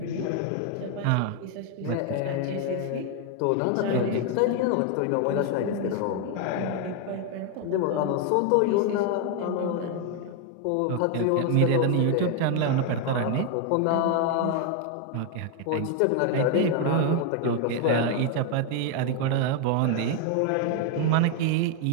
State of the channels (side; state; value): both; different; correlation 0.01